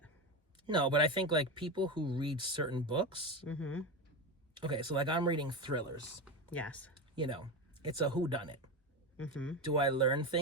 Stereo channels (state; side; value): normal; both; correlation 0.19